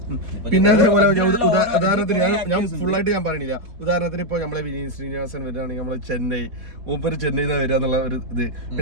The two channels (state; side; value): late; left; 4.1 ms